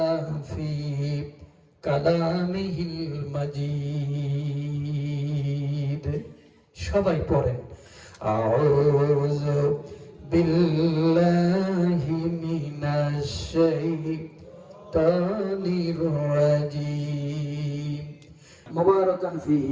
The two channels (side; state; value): both; identical; correlation 1.00